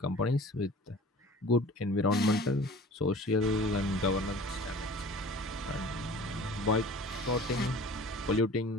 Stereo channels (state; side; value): normal; both; correlation 0.44